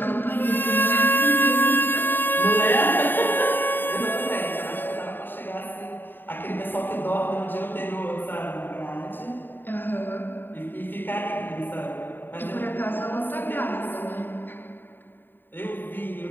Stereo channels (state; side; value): late; right; 0.093 ms